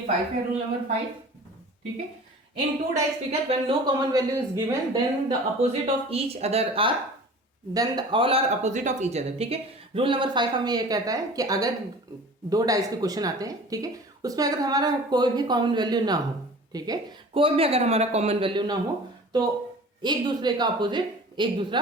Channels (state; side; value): normal; both; correlation 0.42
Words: 5 है, रूल नंबर 5, ठीक है। In 2 dice figure when no common value is given then the opposite of each other are all are opposite of each other, ठीक है। रूल नंबर 5 हमें ये कहता है कि अगर 2 डाइस के क्वेश्चन आते हैं, ठीक है, उसमें अगर हमारा कोई भी कॉमन वैल्यू ना हो, ठीक है, कोई भी अगर हमारा कॉमन वैल्यू ना हो तो एक दूसरे का अपोजिट एक दूसरा